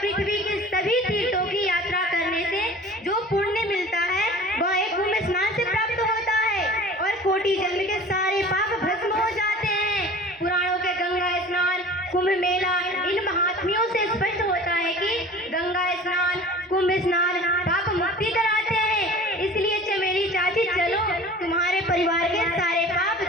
के सभी तीर्थों की यात्रा करने से जो पुण्य मिलता है वह एक कुंभ स्नान से प्राप्त होता है और कोटि जन्म के सारे पाप भस्म हो जाते हैं। पुराणों के गंगा स्नान, कुंभ मेला, इन महात्म्यों से स्पष्ट होता है कि गंगा स्नान, कुंभ स्नान पाप मुक्ति कराते हैं। इसलिए चमेली चाची चलो, तुम्हारे परिवार के सारे पाप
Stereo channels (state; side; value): normal; both; correlation 0.42